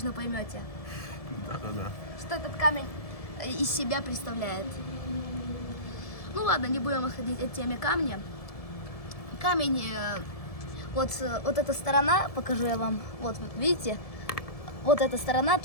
поймете, Да-да-да. что этот камень из себя представляет. Ну ладно, не будем отходить от темы камня. Камень, вот эта сторона, покажу я вам, вот видите, вот эта сторона,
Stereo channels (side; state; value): right; late; 1.7 ms